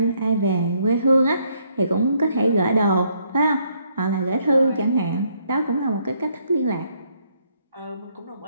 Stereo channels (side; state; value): both; inverted; correlation -0.71